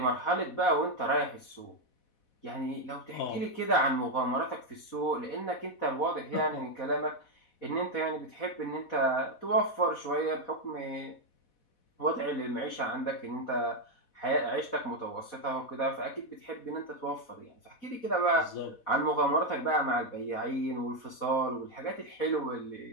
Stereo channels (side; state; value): right; late; 4.1 ms